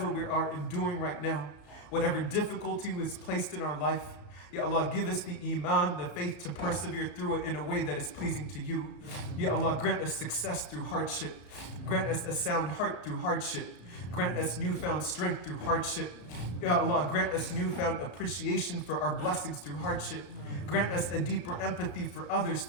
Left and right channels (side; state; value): right; late; 34 ms